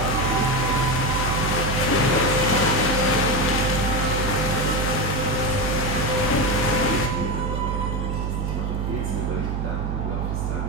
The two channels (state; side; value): noise; right; hum, 1 dB below the sound